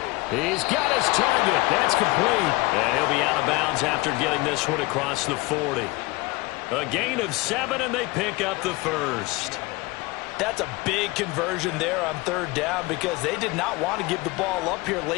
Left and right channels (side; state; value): right; quieter; 22.7 dB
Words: He's got his target. That's complete. And he'll be out of bounds after getting this one across the 40. A gain of 7, and they pick up the first. That's a big conversion there on third down because they did not want to give the ball up here